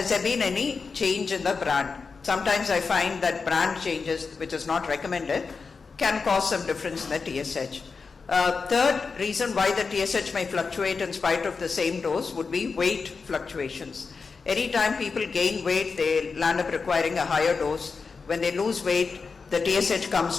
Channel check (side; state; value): right; quieter; 4.8 dB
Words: there been any change in the brand? Sometimes I find that brand changes, which is not recommended, can cause some difference in the TSH. Third reason why the TSH may fluctuate in spite of the same dose would be weight fluctuations. Anytime people gain weight, they land up requiring a higher dose. When they lose weight, the TSH comes